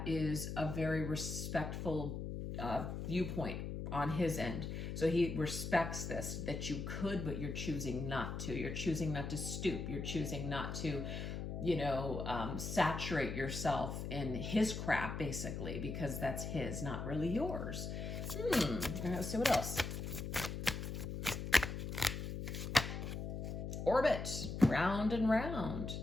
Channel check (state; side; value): noise; left; hum, 5 dB below the sound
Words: is a very respectful viewpoint on his end. So he respects this, that you could, but you're choosing not to. You're choosing not to stoop. You're choosing not to saturate yourself in his crap, basically, because that's his, not really yours. All right, let's see what else. Orbit, round and round.